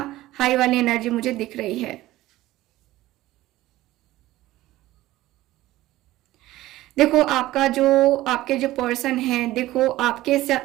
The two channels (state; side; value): quieter; left; 16.4 dB